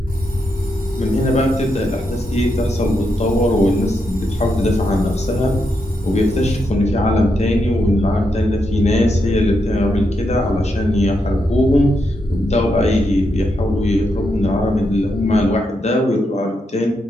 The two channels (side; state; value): both; normal; correlation 0.82